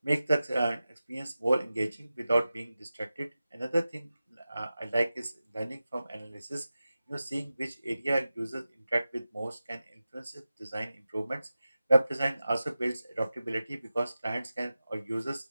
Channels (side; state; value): both; inverted; correlation -0.94